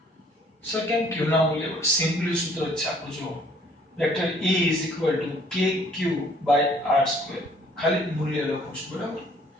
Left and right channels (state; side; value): normal; both; correlation 0.59